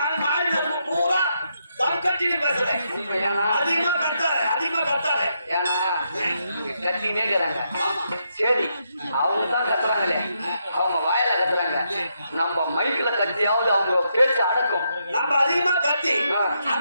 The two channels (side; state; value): both; inverted; correlation -0.80